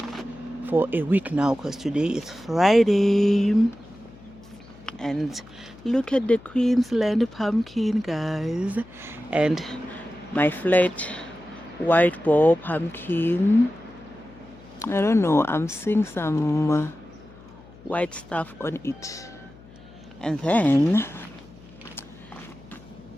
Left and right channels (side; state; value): left; noise; hum, 22 dB below the sound